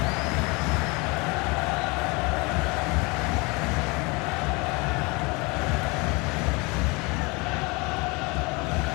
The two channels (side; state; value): right; quieter; 27.0 dB